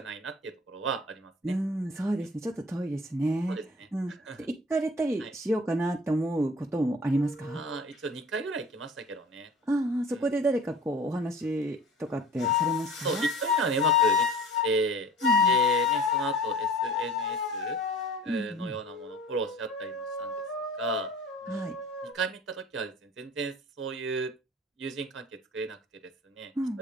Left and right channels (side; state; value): both; normal; correlation 0.44